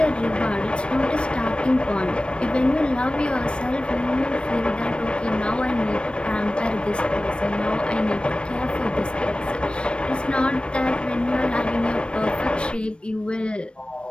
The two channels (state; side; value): late; right; 0.058 ms